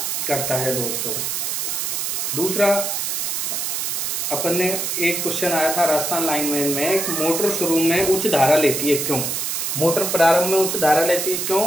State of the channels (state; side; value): noise; right; hiss, 1 dB below the sound